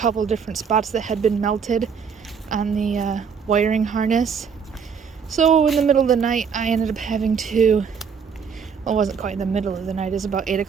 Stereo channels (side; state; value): left; quieter; 6.5 dB